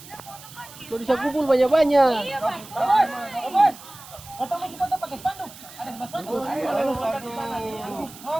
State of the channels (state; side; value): noise; right; hiss, 18 dB below the sound